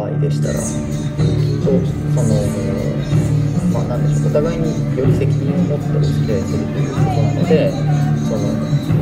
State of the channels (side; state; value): both; identical; correlation 1.00